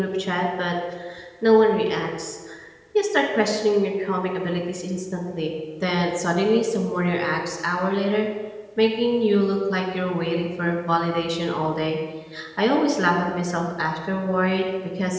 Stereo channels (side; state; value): both; identical; correlation 1.00